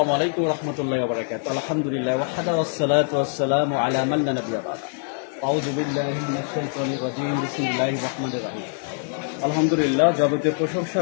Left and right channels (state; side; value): silent; right; 63 dB below the other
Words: আলাইকুম রহমতুল্লাহি ওয়া বারাকাতুহু। আলহামদুলিল্লাহ ওয়াহদা ওয়াসসালাতু ওয়াসসালামু আলা মান লা নাবিয়্যা বা'দা। আউযু বিল্লাহি মিনাশ শাইতানির রাজীম। বিসমিল্লাহির রহমানির রহিম। আলহামদুলিল্লাহ, যাবতীয় প্রশংসা